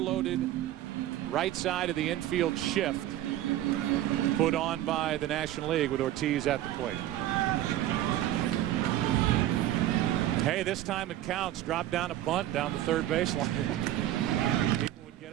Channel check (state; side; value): quieter; left; 13.4 dB